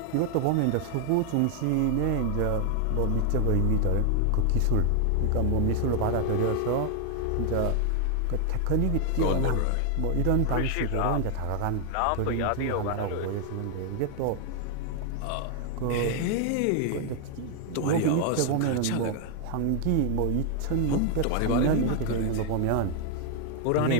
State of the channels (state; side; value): different; both; correlation 0.00